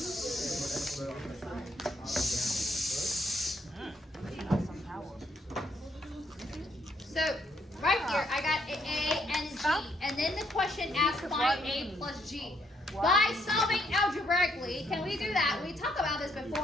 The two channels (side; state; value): both; normal; correlation 0.72